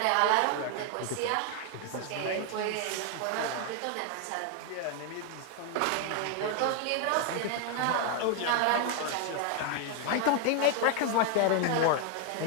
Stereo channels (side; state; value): both; different; correlation 0.00